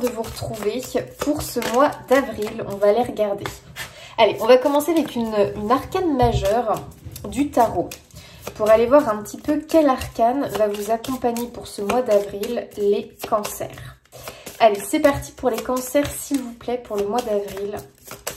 de vous retrouver pour ce mois d'avril. On va aller regarder. Allez, on va commencer avec une arcane majeure du tarot. Pour aller voir un petit peu quel arcane va vous accompagner pour ce mois d'avril, les cancers. Allez, c'est parti pour les cancers, s'il vous plaît, pour le mois d'avril.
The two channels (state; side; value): identical; both; correlation 1.00